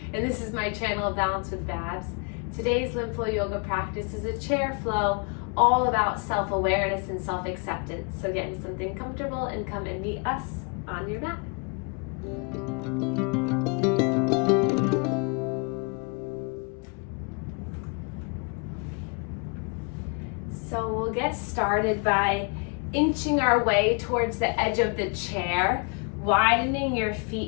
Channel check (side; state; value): right; quieter; 35.9 dB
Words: this is my channel, Balance with Babz. Today's Lymph flow yoga practice is a chair flow all about self-awareness and self-acceptance. So get into something comfortable and come and meet us on your mat. So we'll get started by inching our way towards the edge of the chair, widening your